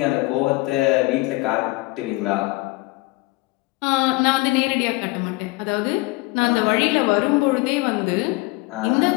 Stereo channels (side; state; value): right; quieter; 22.8 dB